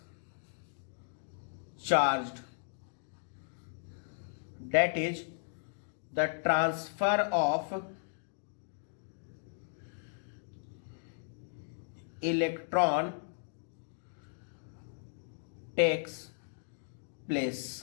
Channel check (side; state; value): right; silent; digital silence